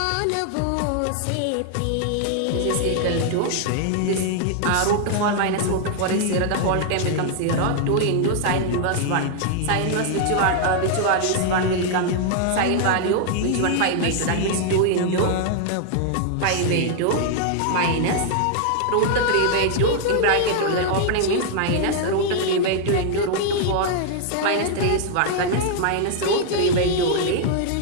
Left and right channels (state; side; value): different; both; correlation 0.00